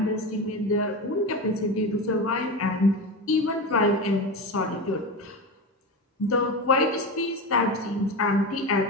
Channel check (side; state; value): both; normal; correlation 0.22